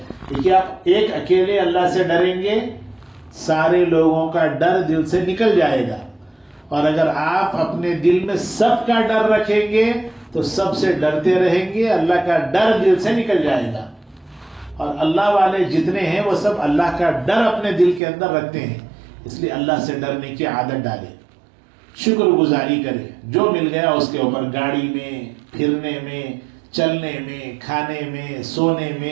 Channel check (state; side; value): drops out; left; at 18.0 s